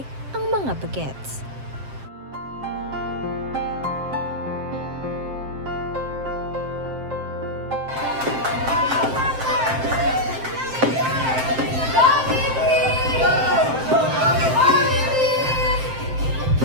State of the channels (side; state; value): left; late; 7.6 ms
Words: ang mga bagets.